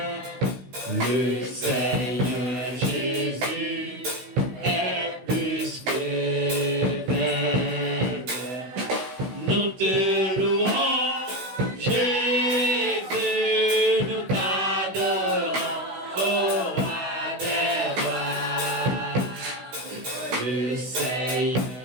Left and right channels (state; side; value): late; left; 16 ms